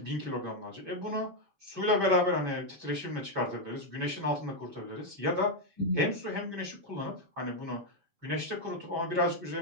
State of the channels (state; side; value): late; left; 7.3 ms